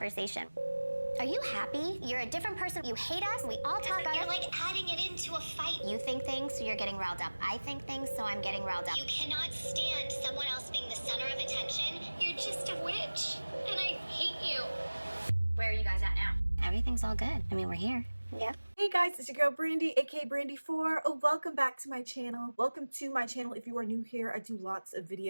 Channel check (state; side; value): inverted; both; correlation -1.00